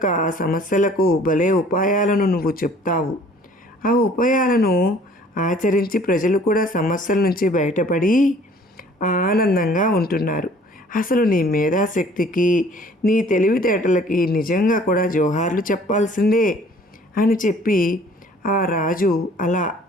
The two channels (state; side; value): normal; both; correlation 0.54